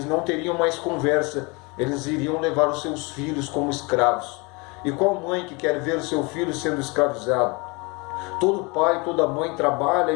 não teriam mais conversa, eles iriam levar os seus filhos como escravos. E qual mãe que quer ver o seu filho sendo escravizado? Todo pai, toda mãe trabalha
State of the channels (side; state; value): right; quieter; 28.1 dB